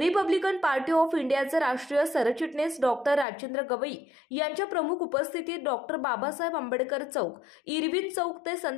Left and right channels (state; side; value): drops out; right; at 3.2 s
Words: पार्टी ऑफ इंडियाचे राष्ट्रीय सरचिटणीस डॉक्टर राजेंद्र गवई यांच्या प्रमुख उपस्थितीत डॉक्टर बाबासाहेब आंबेडकर चौक, इरविन चौक ते